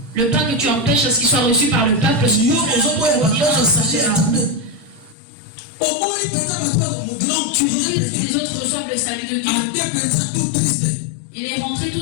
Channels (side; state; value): right; drops out; at 5.2 s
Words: le pain que tu empêches à ce qu'il soit reçu par le peuple, tu refuses que les autres reçoivent le salut de Dieu. Il est rentré